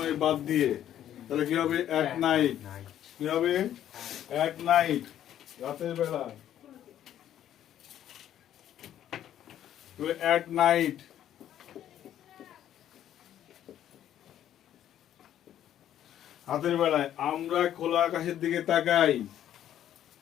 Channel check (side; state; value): right; quieter; 11.1 dB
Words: বাদ দিয়ে, তাহলে কি হবে? At night. কি হবে? অ্যাট নাইট, রাতের বেলা। অ্যাট নাইট, রাতের বেলায় আমরা খোলা আকাশের দিকে তাকাই।